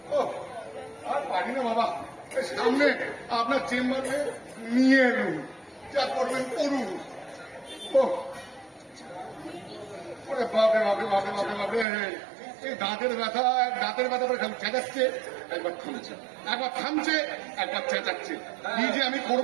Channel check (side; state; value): left; drops out; at 11.9 s